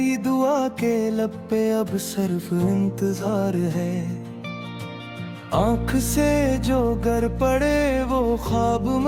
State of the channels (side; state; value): both; identical; correlation 1.00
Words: दुआ के लब पे अब सिर्फ इंतजार है। आंख से जो गर पड़े वो ख्वाब